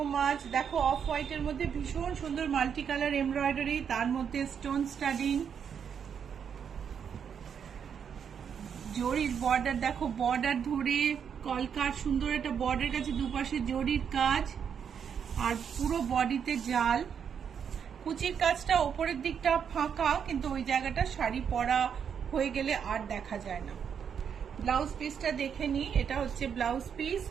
much. দেখো অফ হোয়াইটের মধ্যে ভীষণ সুন্দর মাল্টি কালার এমব্রয়ডারি, তার মধ্যে স্টোন স্টাডিং, জরির বর্ডার। দেখো বর্ডার ধরে কলকার সুন্দর একটা বর্ডার কাছে দুপাশে জরির কাজ, আর পুরো বডিতে জাল। কুচির কাজটা ওপরের দিকটা ফাঁকা, কিন্তু ওই জায়গাটা শাড়ি পরা হয়ে গেলে আর দেখা যায় না। ব্লাউজ পিসটা দেখে নি, এটা হচ্ছে ব্লাউজ পিস।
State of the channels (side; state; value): left; quieter; 7.5 dB